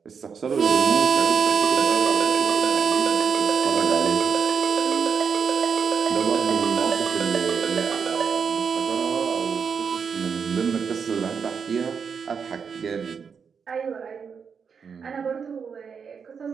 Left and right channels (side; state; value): left; quieter; 6.3 dB